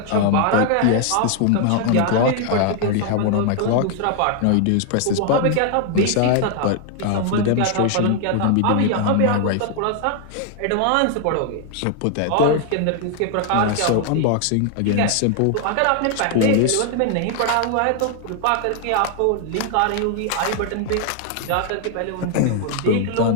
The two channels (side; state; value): both; different; correlation 0.00